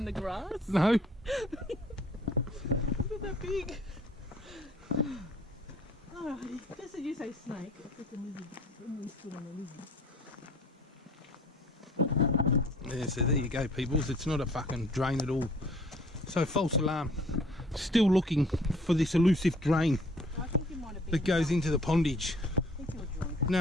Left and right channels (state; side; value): normal; both; correlation 0.54